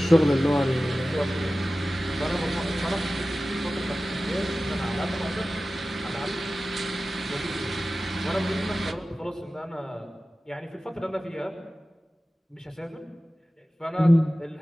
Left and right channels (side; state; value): both; normal; correlation 0.96